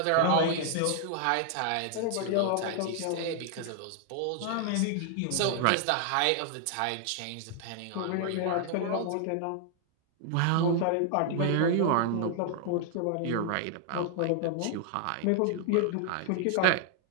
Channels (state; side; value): different; both; correlation 0.00